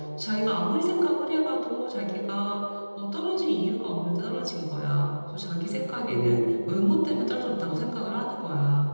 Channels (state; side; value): inverted; both; correlation -1.00